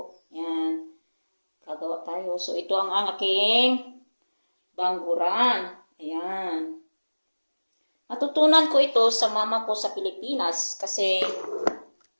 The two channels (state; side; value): inverted; both; correlation -1.00